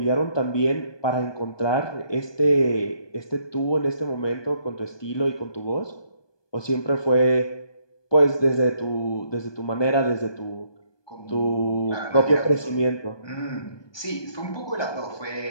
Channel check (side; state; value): right; late; 1.2 ms